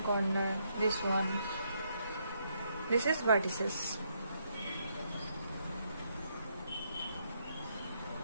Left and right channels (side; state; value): both; inverted; correlation -0.75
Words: this one. This is vertices.